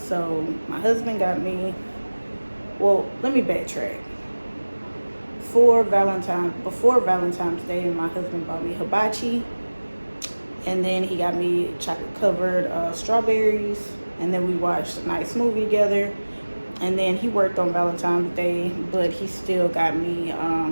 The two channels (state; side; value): inverted; both; correlation -1.00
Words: So my husband got me, well, let me backtrack. Before Valentine's Day, my husband bought me hibachi, and then he got me chocolate covered strawberries, and then we watched a nice movie together. And then he worked on Valentine's Day, but he still got me